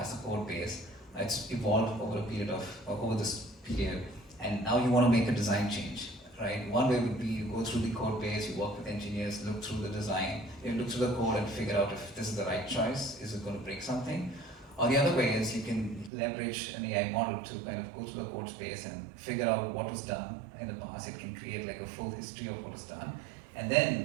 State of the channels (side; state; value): left; drops out; at 16.1 s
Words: a code base. It's evolved over this period, and now you want to make a design change, right? One way would be you go through the code base, you work with engineers, look through the design, you look through the code and figure out if this is the right choice, is it going to break something? Or the other way is you can leverage an AI model to kind of go through the code space and figure out what was done in the past. It can create like a full history of what was done, and